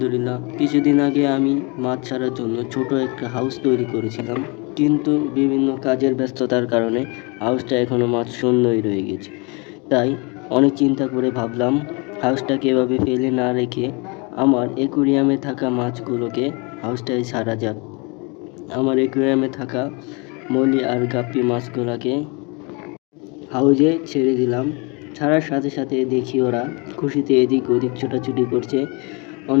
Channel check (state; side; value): quieter; right; 30.3 dB